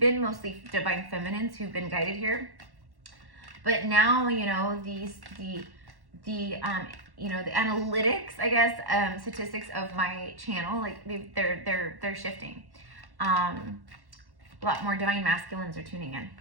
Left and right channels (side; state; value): left; late; 1.1 ms